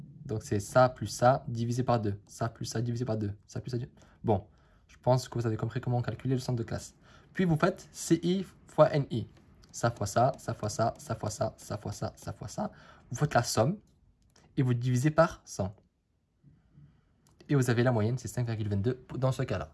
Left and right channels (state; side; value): identical; both; correlation 1.00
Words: c'est ça plus ça divisé par 2. Ça plus ça divisé par 2. Ça plus ça. Bon, je pense que vous avez compris comment calculer le centre de classe. Puis vous faites CI fois NI. Ça fois ça, ça fois ça, ça fois ça, ça fois ça, ça fois ça. Vous faites la somme et vous divisez par 100. Et vous avez la moyenne, c'est 5,22 dans ce cas-là.